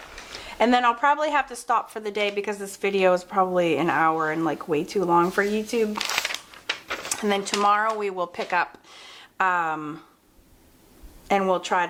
And then I'll probably have to stop for the day because this video is probably an hour and like way too long for YouTube. And then tomorrow we will pick up and we'll try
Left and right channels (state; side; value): identical; both; correlation 1.00